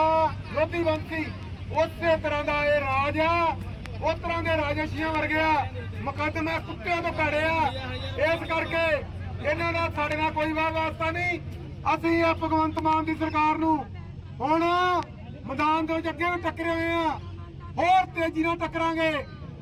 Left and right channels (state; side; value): identical; both; correlation 1.00